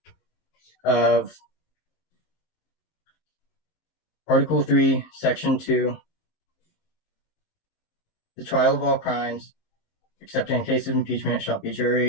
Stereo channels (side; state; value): right; late; 19 ms